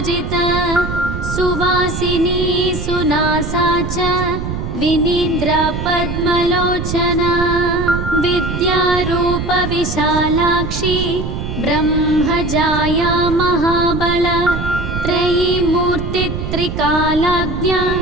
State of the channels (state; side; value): noise; right; rumble, 5 dB below the sound